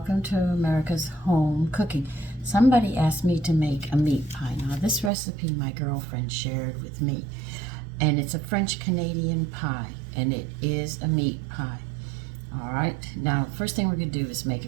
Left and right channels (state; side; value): drops out; left; at 5.1 s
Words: to America's Home Cooking. Somebody asked me to make a meat pie. Now this recipe my girlfriend shared with me, and it's a French Canadian pie, and it is a meat pie. All right, now first thing we're going to do is make a